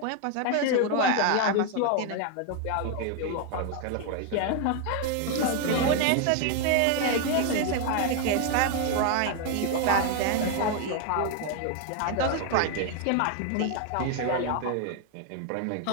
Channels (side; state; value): both; different; correlation 0.01